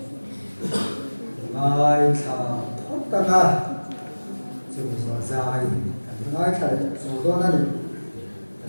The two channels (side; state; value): both; inverted; correlation -1.00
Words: ngay thà tất cả chúng ta dài ngay thà số đó này